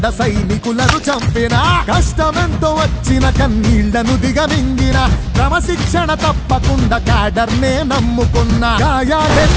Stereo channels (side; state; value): both; identical; correlation 1.00